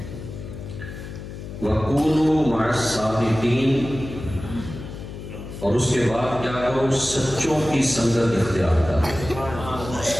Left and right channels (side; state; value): left; noise; hum, 11 dB below the sound